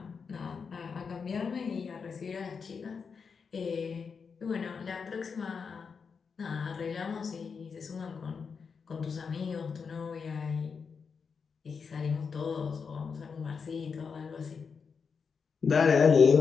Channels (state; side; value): quieter; right; 5.7 dB